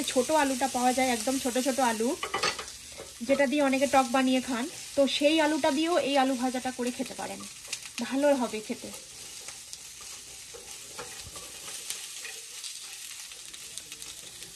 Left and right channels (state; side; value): identical; both; correlation 1.00